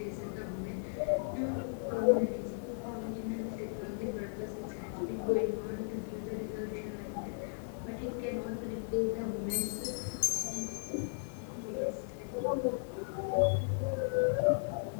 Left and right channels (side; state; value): right; silent; digital silence